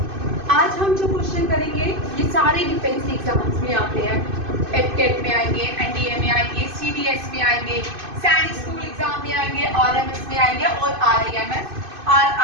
आज हम जो क्वेश्चन करेंगे ये सारे डिफेंस एग्जाम्स में आते हैं। एफकेट में आएंगे, एनडीए में आएंगे, सीडीएस में आएंगे, सैनिक स्कूल एग्जाम में आएंगे, आरएमएस में आएंगे और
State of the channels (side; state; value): left; late; 2.5 ms